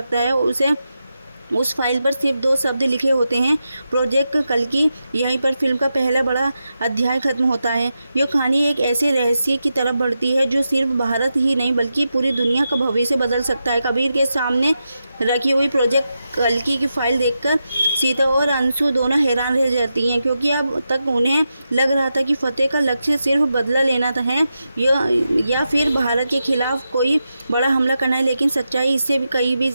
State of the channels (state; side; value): inverted; both; correlation -0.88